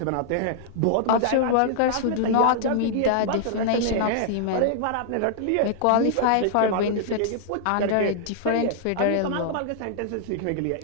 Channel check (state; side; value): different; both; correlation -0.01